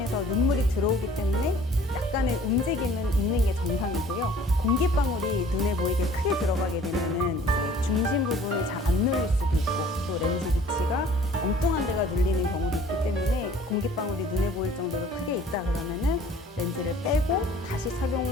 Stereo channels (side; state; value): both; normal; correlation 0.52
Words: 눈물이 들어오기 때문에 약간의 움직임은 있는 게 정상이고요. 공기방울이 눈에 보이게 크게 들어가게 되면은 이제 중심 부분이 잘 안 눌릴 수도 있고 또 렌즈 위치가 엉뚱한 데가 눌리는 경우도 있기 때문에 공기방울이 눈에 보일 정도로 크게 있다 그러면은 렌즈를 빼고 다시